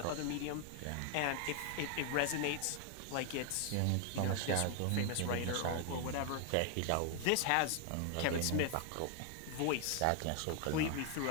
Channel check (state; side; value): different; both; correlation 0.00